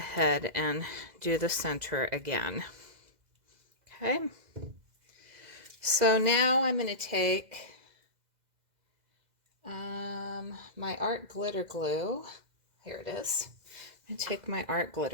and do the center again. Okay. So now I'm going to take my art glitter glue. Here it is. I'm going to take my art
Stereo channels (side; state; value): left; late; 2.0 ms